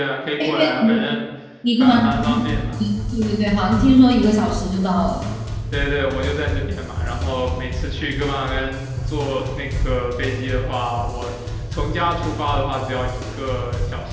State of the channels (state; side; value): identical; both; correlation 1.00